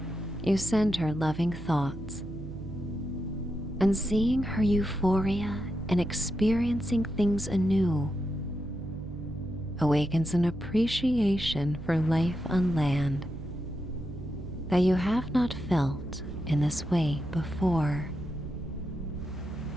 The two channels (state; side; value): noise; right; hum, 11 dB below the sound